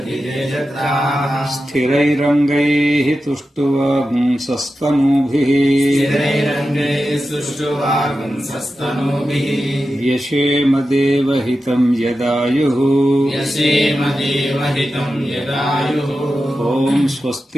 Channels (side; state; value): both; normal; correlation 0.92